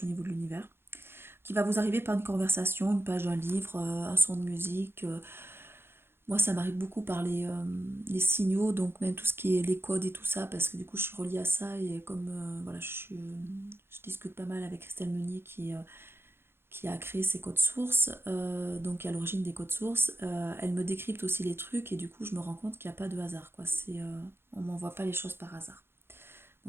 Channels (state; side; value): late; left; 0.11 ms